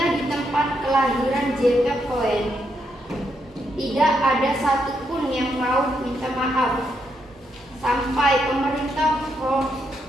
di tempat kelahiran JP Cohen tidak ada satupun yang mau minta maaf. Sampai pemerintah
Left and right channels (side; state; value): both; normal; correlation 0.79